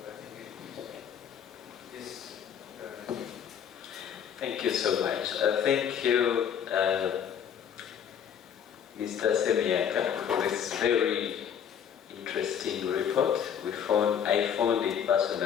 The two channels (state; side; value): quieter; right; 8.3 dB